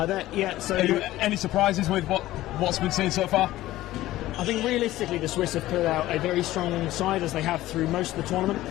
so any surprises with what's been seen so far? I think realistically the Swiss have put out a very strong side, as they have through most of the tournament.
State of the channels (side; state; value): right; quieter; 15.8 dB